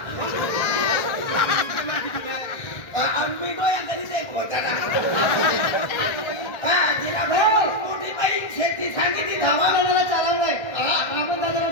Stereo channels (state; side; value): late; right; 1.6 ms